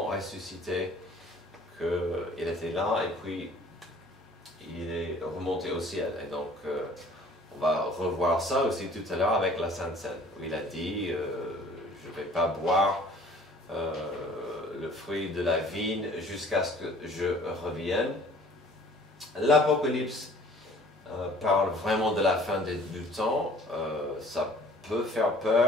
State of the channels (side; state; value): both; normal; correlation 0.52